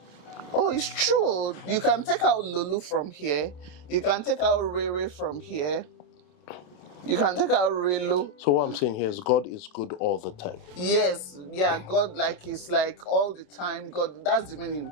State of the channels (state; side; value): late; right; 28 ms